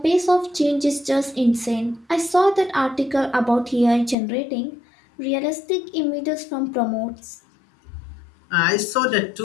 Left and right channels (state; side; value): drops out; right; at 4.2 s